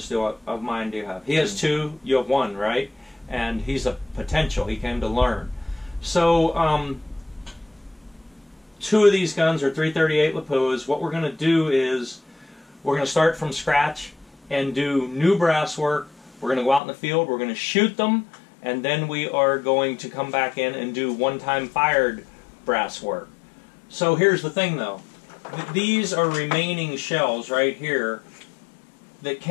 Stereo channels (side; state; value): right; drops out; at 16.8 s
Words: of mine do you have? He has 2, you have 1, right? And he's a potential, he came to learn. So, 2 of these guns are 338 Lapuas. What we're going to do is, we're going to start from scratch and do new brass work. We're going to go out in the field, we're going to shoot them, and then we are going to come back in and do one-time fired brass work. So here's the thing though. These are remaining shells right here that